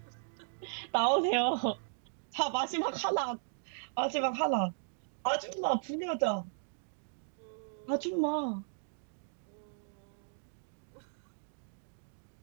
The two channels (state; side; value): silent; left; digital silence